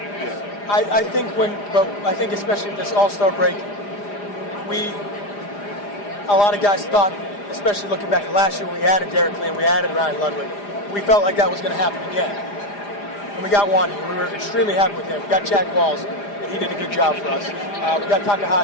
I think especially this All-Star break, a lot of guys thought, especially looking back at last year when we added Derek Lee and we added Ryan Ludwig, we felt like that was going to happen again. And we got Wandy, and we were extremely happy with him. We got Chad Walls, and he did a good job for us. We got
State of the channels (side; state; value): right; late; 4.9 ms